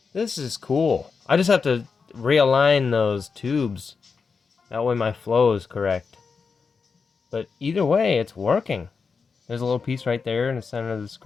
This is cool. I just have to realign those tubes. That way my flow is correct. But either way, it's working. There's a little piece right there in the center of the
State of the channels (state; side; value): quieter; right; 5.2 dB